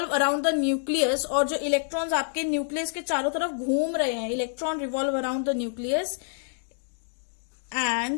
around the nucleus. और जो इलेक्ट्रॉन्स आपके न्यूक्लियस के चारों तरफ घूम रहे हैं, electron revolve around the nucleus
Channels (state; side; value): silent; right; digital silence